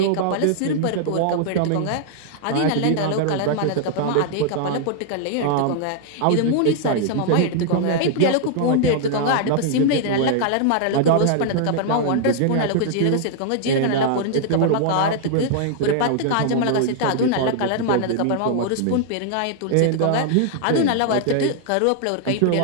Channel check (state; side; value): different; both; correlation -0.01